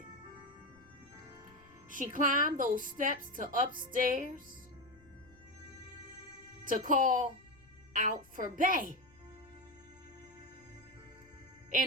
She climbed those steps to upstairs to call out for Bay.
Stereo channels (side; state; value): left; noise; rumble, 28 dB below the sound